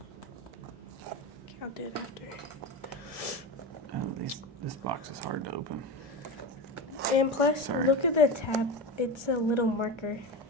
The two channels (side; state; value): both; normal; correlation 0.22